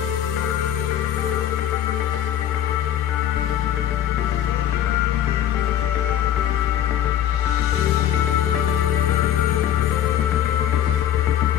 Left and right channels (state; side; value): quieter; right; 10.6 dB